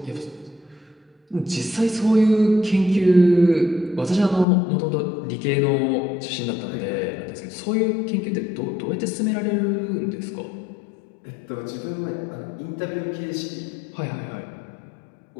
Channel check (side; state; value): right; drops out; at 4.5 s